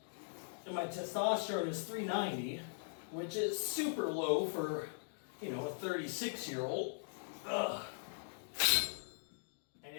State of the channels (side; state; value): right; silent; digital silence